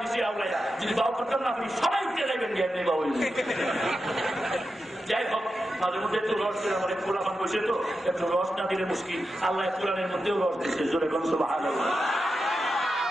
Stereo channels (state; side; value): normal; both; correlation 0.89